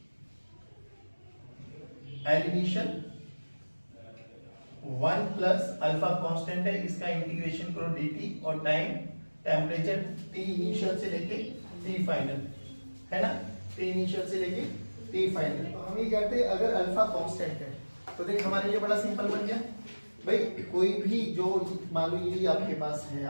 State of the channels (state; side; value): inverted; both; correlation -1.00